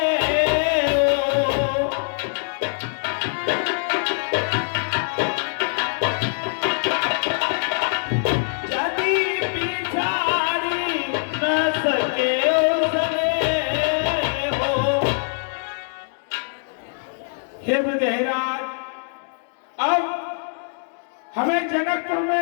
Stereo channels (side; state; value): right; silent; digital silence